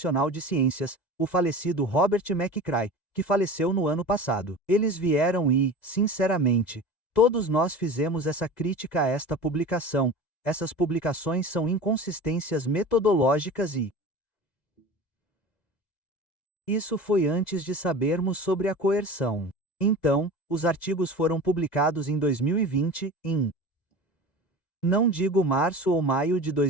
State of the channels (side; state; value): right; late; 2.0 ms